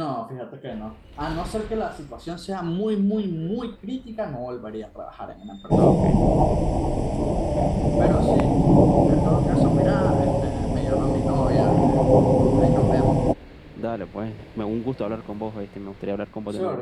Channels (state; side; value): identical; both; correlation 1.00